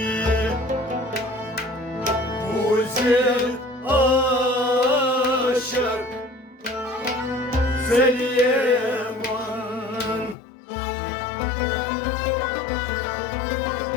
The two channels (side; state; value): right; drops out; at 10.4 s